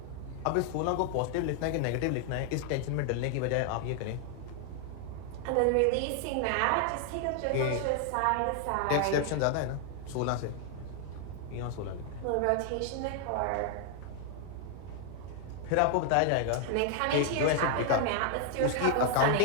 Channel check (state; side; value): different; both; correlation 0.00